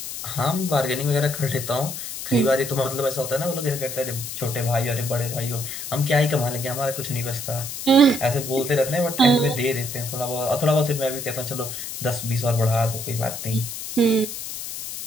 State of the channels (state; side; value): noise; left; hiss, 7 dB below the sound